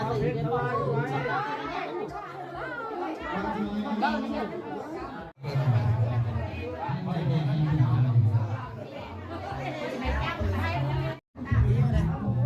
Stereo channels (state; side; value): identical; both; correlation 1.00